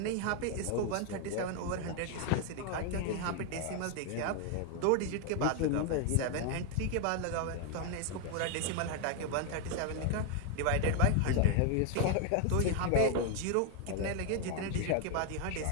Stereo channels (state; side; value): different; both; correlation 0.01